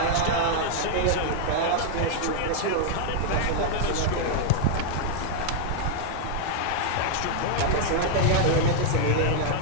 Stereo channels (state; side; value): different; both; correlation -0.01